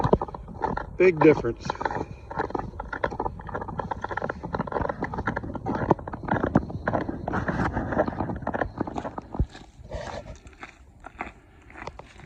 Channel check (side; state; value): both; identical; correlation 1.00